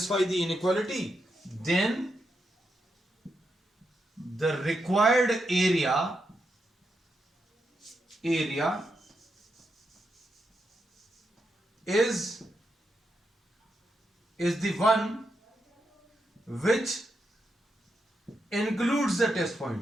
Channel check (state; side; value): normal; both; correlation 0.84